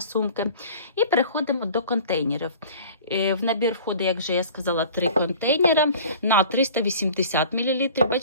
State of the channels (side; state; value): both; inverted; correlation -0.44